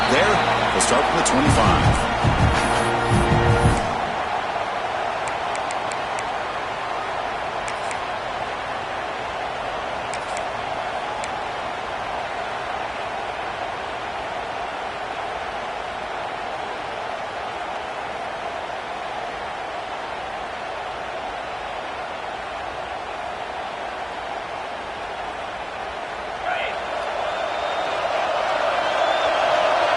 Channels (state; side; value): identical; both; correlation 1.00